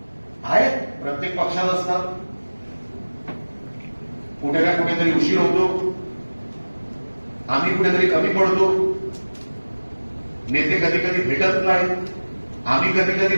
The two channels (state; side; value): inverted; both; correlation -1.00